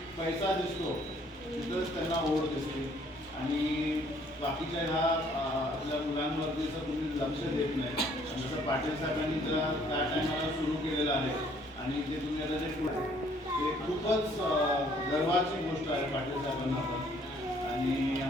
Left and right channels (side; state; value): both; normal; correlation 0.62